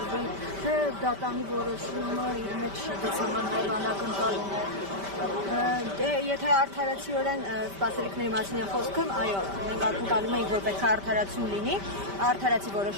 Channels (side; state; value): left; late; 5.1 ms